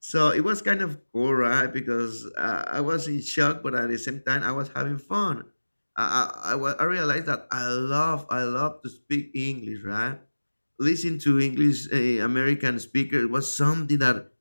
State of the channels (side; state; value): both; inverted; correlation -1.00